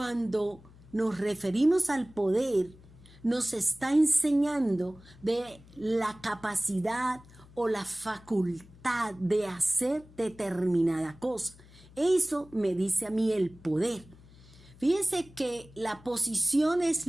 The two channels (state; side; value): noise; left; hum, 23 dB below the sound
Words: nos referimos al poder, nos está enseñando de la capacidad o la facultad de hacer determinada cosa. Eso me dice a mí el poder. Fíjese que la posición es